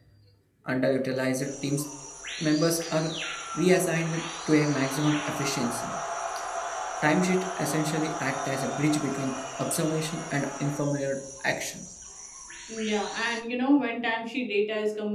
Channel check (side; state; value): both; identical; correlation 1.00